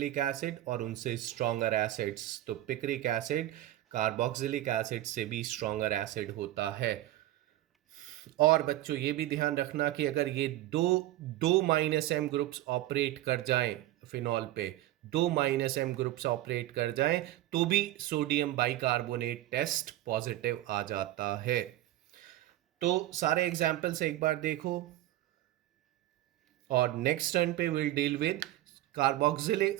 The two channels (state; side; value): quieter; left; 14.8 dB